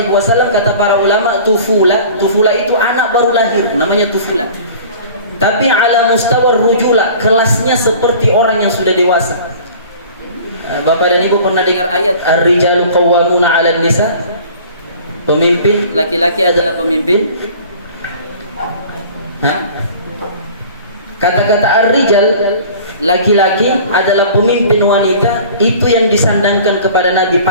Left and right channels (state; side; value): inverted; both; correlation -0.44